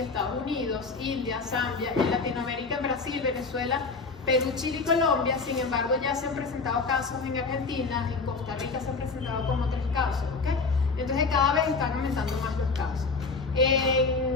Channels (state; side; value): quieter; right; 4.3 dB